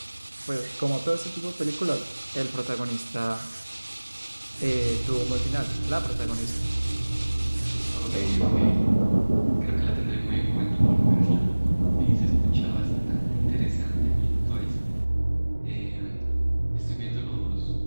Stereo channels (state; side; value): inverted; both; correlation -1.00